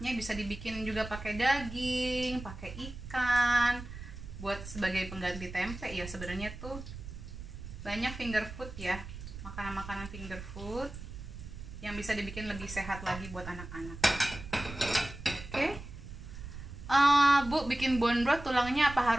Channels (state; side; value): noise; right; rumble, 11 dB below the sound